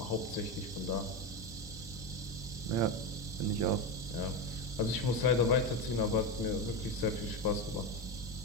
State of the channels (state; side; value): normal; both; correlation 0.15